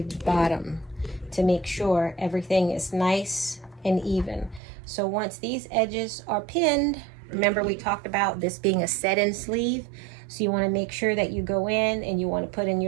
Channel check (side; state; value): left; drops out; at 4.6 s